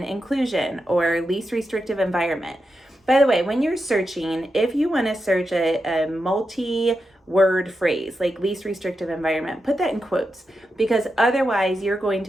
inclusion or least restrictive environment. By the way, when you're searching, if you want to search a multi-word phrase like least restrictive environment, put that in quotes, because otherwise you're going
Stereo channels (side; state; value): both; normal; correlation 0.88